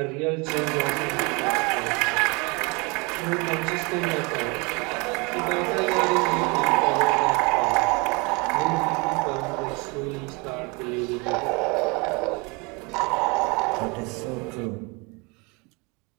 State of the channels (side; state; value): left; quieter; 28.9 dB